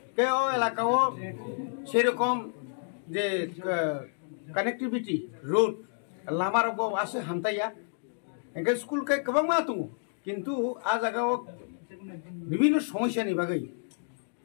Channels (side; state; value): right; silent; digital silence